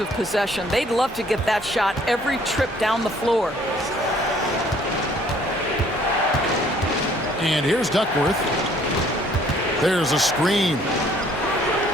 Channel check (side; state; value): both; normal; correlation 0.59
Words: possession. They'd love to get that shot every trip down the floor. And here's Duckworth. There's a screen.